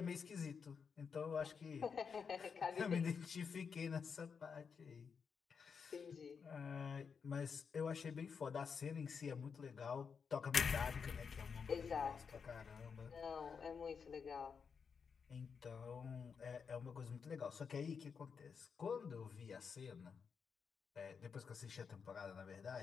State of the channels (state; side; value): quieter; right; 6.0 dB